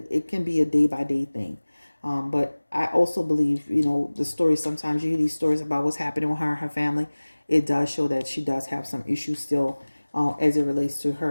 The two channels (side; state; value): both; inverted; correlation -1.00